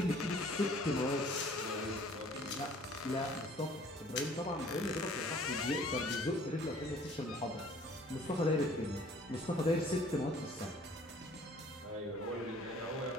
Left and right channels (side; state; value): both; normal; correlation 0.54